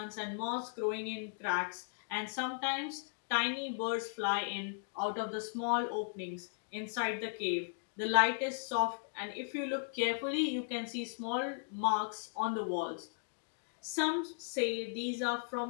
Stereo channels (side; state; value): right; silent; digital silence